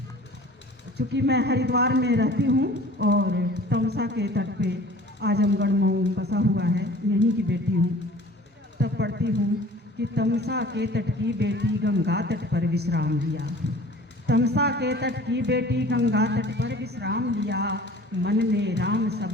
चूँकि मैं हरिद्वार में रहती हूँ और तमसा के तट पे आजमगढ़ मऊ बसा हुआ है, यहीं की बेटी हूँ। तब पढ़ती हूँ कि तमसा के तट की बेटी गंगा तट पर विश्राम लिया, तमसा के तट की बेटी गंगा तट पर विश्राम लिया, मन में राम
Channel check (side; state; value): both; normal; correlation 0.46